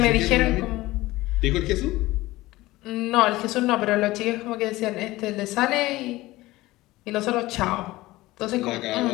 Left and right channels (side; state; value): right; quieter; 18.5 dB